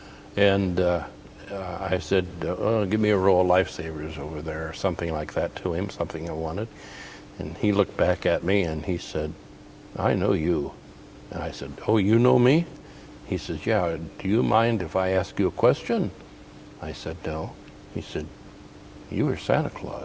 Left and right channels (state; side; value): identical; both; correlation 1.00